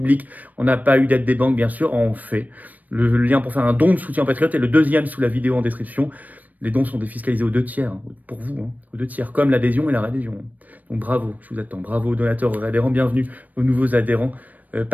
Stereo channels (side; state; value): left; late; 0.080 ms